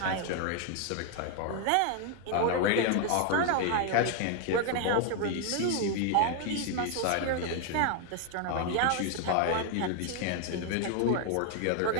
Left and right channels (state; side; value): different; both; correlation 0.01